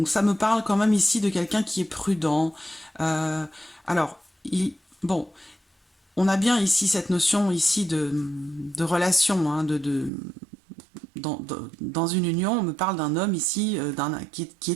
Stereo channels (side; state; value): left; drops out; at 10.1 s